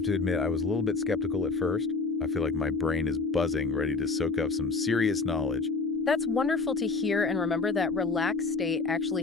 to admit, I was a little bit skeptical at first. I feel like my brain is buzzing, ready to soak up some serious knowledge. That's wonderful to hear, and remember that relaxed state actually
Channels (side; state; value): right; quieter; 4.1 dB